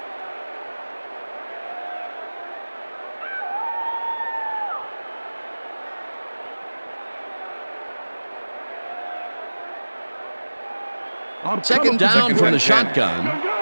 Second down from the shotgun.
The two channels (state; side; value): inverted; both; correlation -1.00